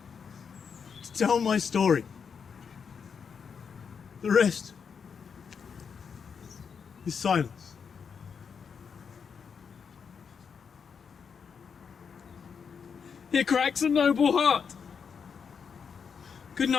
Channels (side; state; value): right; quieter; 6.4 dB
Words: to tell my story. The rest is silence. Here cracks a noble heart. Good